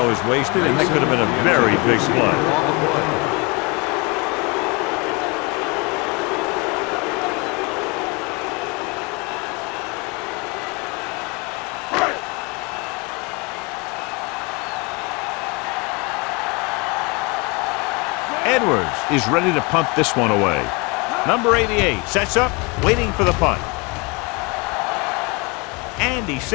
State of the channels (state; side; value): quieter; right; 28.4 dB